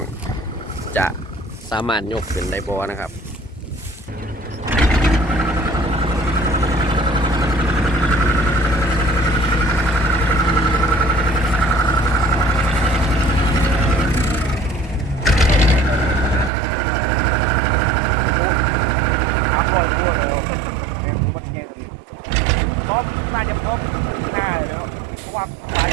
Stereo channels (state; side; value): drops out; left; at 16.5 s